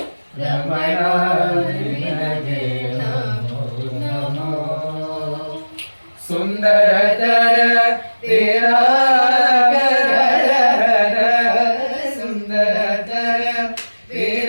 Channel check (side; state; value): both; inverted; correlation -1.00